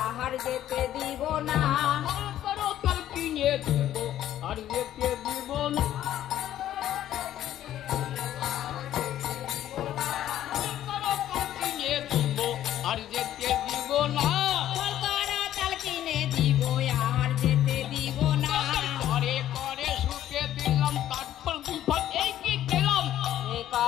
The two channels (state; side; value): quieter; right; 12.2 dB